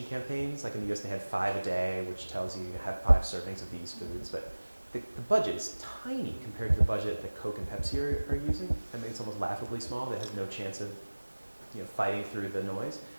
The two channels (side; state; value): both; inverted; correlation -1.00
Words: campaigns. Like in the US, they had 5 a day, which tells you have 5 servings of these foods. But the budget is tiny compared to the budget that Coke and Pepsi are using. I mean, it's almost laughably small. That has no chance of fighting through the noise.